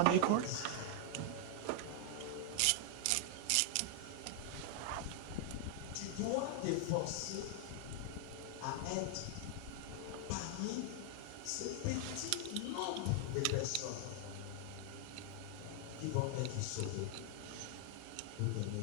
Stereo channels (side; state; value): both; different; correlation 0.00